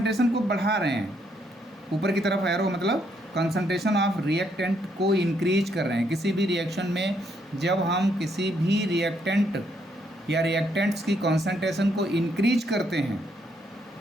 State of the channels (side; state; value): both; normal; correlation 0.73